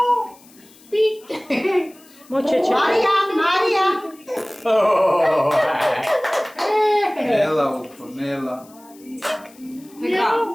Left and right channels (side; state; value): left; noise; hiss, 26 dB below the sound